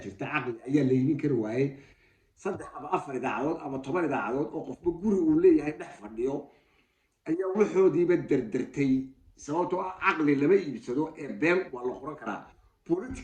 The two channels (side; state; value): both; identical; correlation 1.00